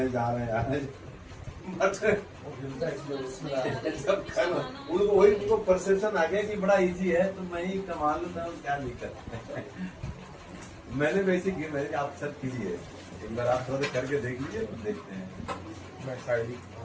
हैं जा रहे हैं, आ रहे हैं। सब उनको वही उनको परसेप्शन आ गया कि बड़ा इजी है तो मैं ही कमा लूँ, क्या दिक्कत है। मैंने वैसे की, मैंने आप सब कीजिए एक बार, आप थोड़ा करके देख लीजिए, देखते हैं।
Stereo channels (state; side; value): identical; both; correlation 1.00